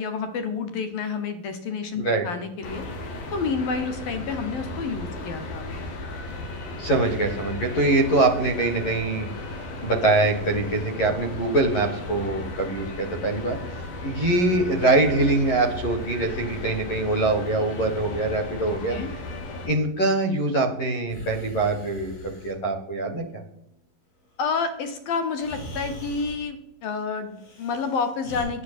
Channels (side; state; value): right; late; 11 ms